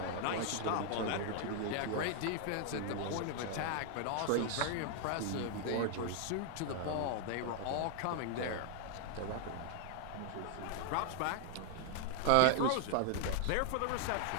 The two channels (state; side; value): different; both; correlation 0.00